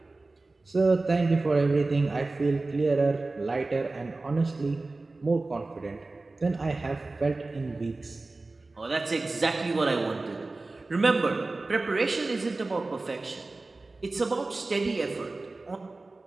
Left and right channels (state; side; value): quieter; left; 3.3 dB